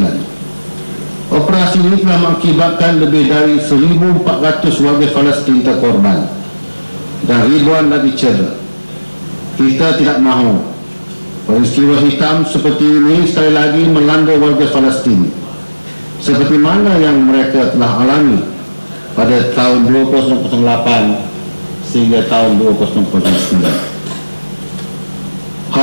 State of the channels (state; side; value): inverted; both; correlation -1.00